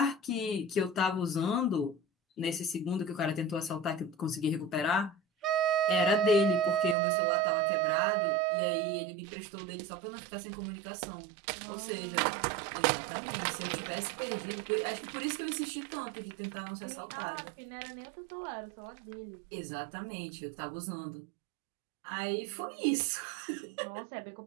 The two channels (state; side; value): drops out; left; at 7.0 s